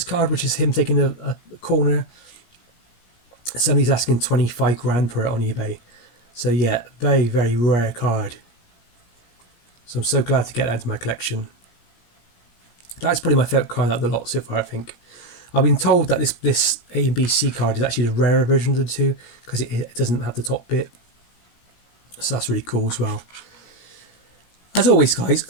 card, which is him taking a corner, somebody's asking 25 grand for it on eBay. So yeah, very, very rare card. So I'm so glad to get that into my collection. That's probably my favourite card out of the lot so far, I think. I've been told that this A and B C card is actually the rarer version of the 2 because it doesn't have the top bit. So that's really cool as well. As always, guys,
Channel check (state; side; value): late; right; 17 ms